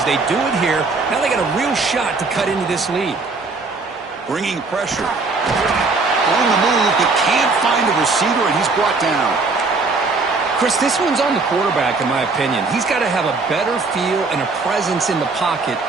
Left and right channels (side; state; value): left; quieter; 3.9 dB